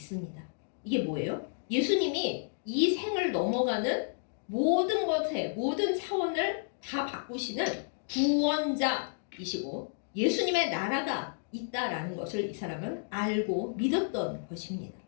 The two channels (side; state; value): right; silent; digital silence